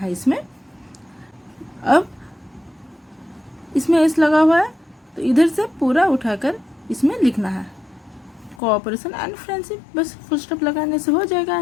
इसमें. अब इसमें एस लगा हुआ है तो इधर से पूरा उठाकर इसमें लिखना है कोऑपरेशन एंड फ्रेंडशिप. बस फुल स्टॉप लगाने से हो जाएगा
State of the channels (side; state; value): right; drops out; at 8.6 s